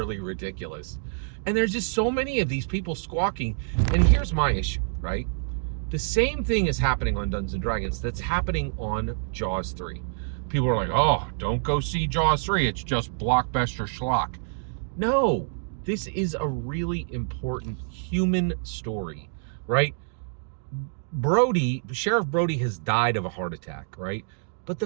ridiculous. And there's just so many of these people squawking. And here's my issue, right? The same thing is happening on Dungeons & Dragons that's happening on Jaws 3. People are like, oh, don't go see Jaws 3. It's just blockbuster schlock. No, this is a really important human story, right? Sheriff Brody has died of a heart attack, right? But the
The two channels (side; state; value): left; silent; digital silence